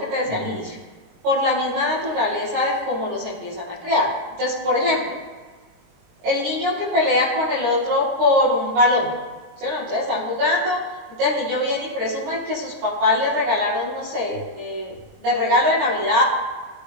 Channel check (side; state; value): left; late; 22 ms